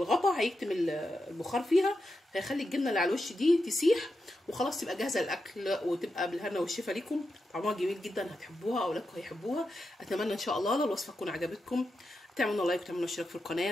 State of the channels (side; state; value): both; normal; correlation 0.88